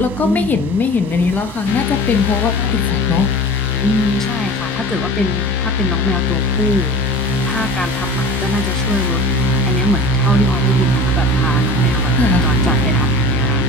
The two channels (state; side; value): normal; both; correlation 0.37